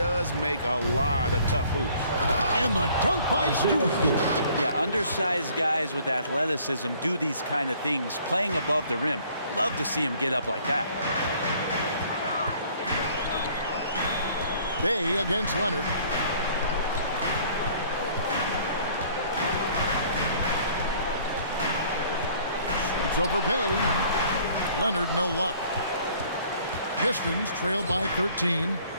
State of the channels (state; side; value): inverted; both; correlation -0.57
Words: make a lot of tough hoops. And the dunk by Stewart. Yeah, undersized guys with athleticism do these kind of things, playing above the rim. Love to see him get up like that. Bay against Leonard. Shoots over Bay. Leonard, no luck. Pistons trailed by 13.